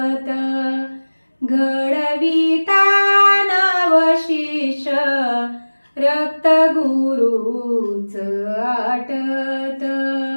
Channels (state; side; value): inverted; both; correlation -1.00